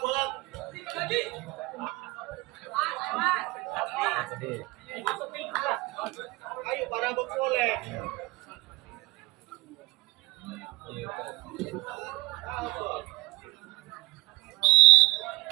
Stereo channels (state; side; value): quieter; left; 21.9 dB